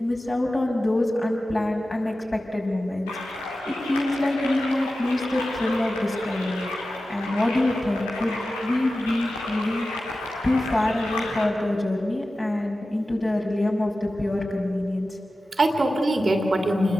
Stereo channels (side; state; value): both; normal; correlation 0.94